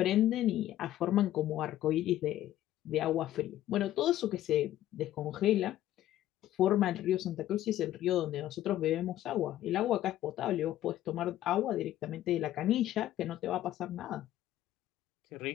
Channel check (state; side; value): quieter; right; 13.3 dB